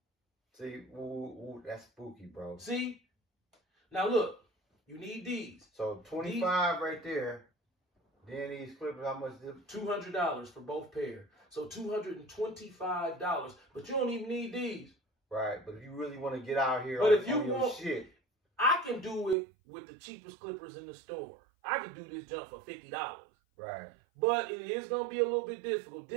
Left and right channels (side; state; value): left; drops out; at 19.4 s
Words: See, ooh, that's spooky, bro. See? Now look, you need these. So 25 right there. Then these Clippers, how much? $200 for both pair. So $225. But you don't even need these. Right, but if you really want to get out here But on, if you on your want, shit. I can do it with the cheapest clippers in the store. I can do this jump for $50. Right. But it is going to be a little bit difficult.